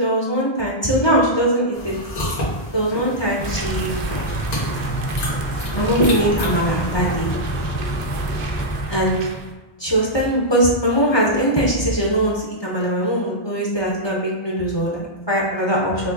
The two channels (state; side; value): late; right; 1.2 ms